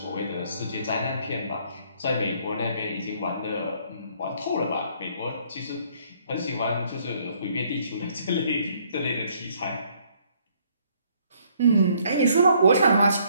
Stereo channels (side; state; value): both; inverted; correlation -0.65